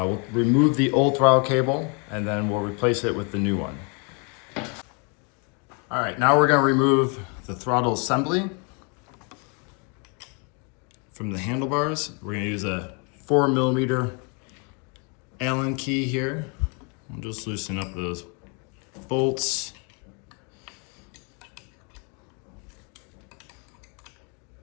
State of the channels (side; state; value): right; quieter; 35.2 dB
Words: remove the old throttle cable and then we'll replace it with the new one. All right, now we're going to remove the throttle assembly from the handlebars. We're going to use a 4mm Allen key here. We'll just loosen up those bolts.